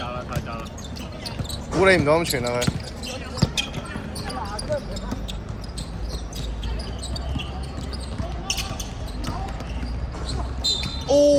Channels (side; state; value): both; identical; correlation 1.00